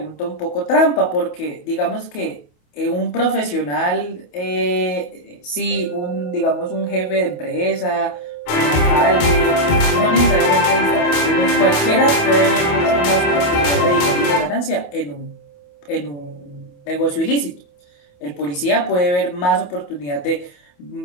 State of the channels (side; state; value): right; late; 28 ms